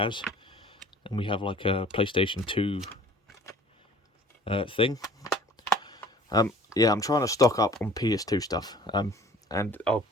And we have like a PlayStation 2 thing. Yeah, I'm trying to stock up on PS2 stuff. And I'm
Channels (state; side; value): normal; both; correlation 0.50